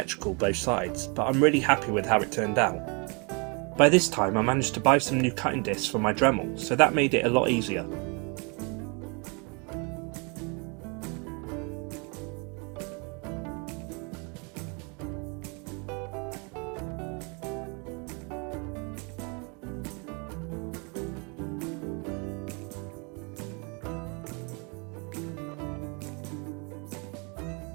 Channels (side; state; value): left; quieter; 32.9 dB